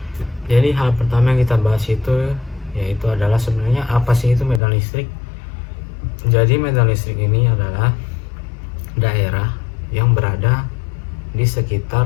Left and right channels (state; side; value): drops out; right; at 4.6 s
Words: Jadi hal pertama yang kita bahas itu yaitu adalah sebenarnya apa sih itu medan listrik. Jadi medan listrik ini adalah daerah yang berada di